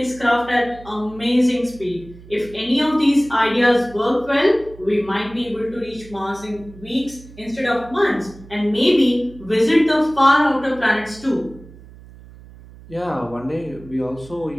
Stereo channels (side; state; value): right; noise; hum, 20 dB below the sound